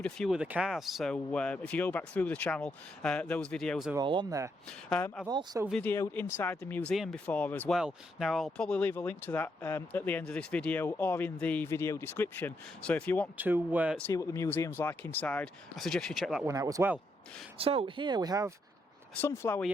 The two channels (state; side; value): normal; both; correlation 0.79